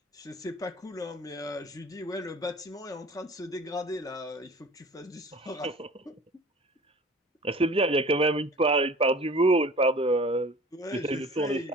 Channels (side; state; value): both; normal; correlation 0.45